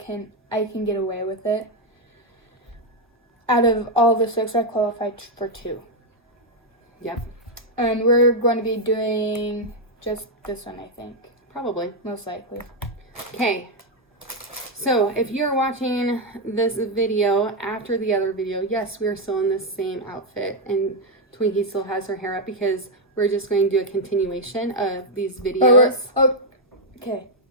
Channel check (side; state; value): both; normal; correlation 0.01